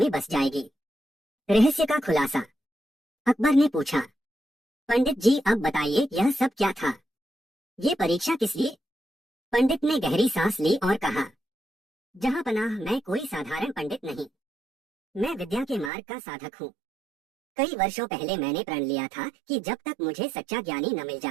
बस जाएगी। रहस्य का खुलासा। अकबर ने पूछा, पंडित जी अब बताइए, यह सब क्या था? ये परीक्षा किस लिए? पंडित ने गहरी सांस ली और कहा, जहां पनाह, मैं कोई साधारण पंडित नहीं। मैं विद्या के मार्ग का साधक हूँ। कई वर्षों पहले मैंने प्रण लिया था कि जब तक मुझे सच्चा ज्ञानी न मिल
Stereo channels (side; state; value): left; drops out; at 15.9 s